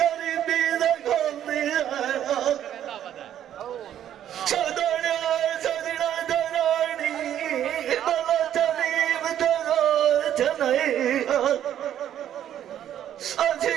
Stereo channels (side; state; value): left; quieter; 10.7 dB